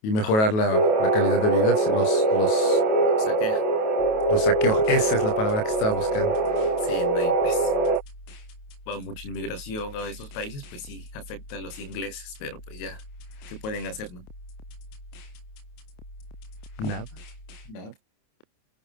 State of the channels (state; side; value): late; right; 28 ms